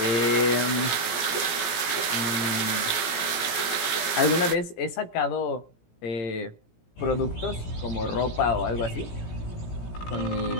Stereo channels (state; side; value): late; right; 17 ms